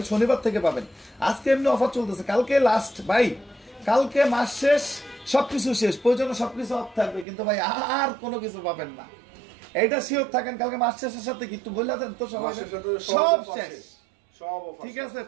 শনিবার থেকে পাবেন। আজকে এমনি অফার চলতেছে, কালকে লাস্ট ভাই, কালকে মাস শেষ, সবকিছু শেষ, প্রয়োজনে সবকিছু অফ থাকবে, কিন্তু ভাই আর কোনো কিছু পাবেন না, এইটা শিওর থাকেন। কালকে মাস শেষের সাথে কি একটু বলে দেন তো, সবাই সব শেষ, ঠিক আছে।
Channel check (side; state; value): left; drops out; at 7.2 s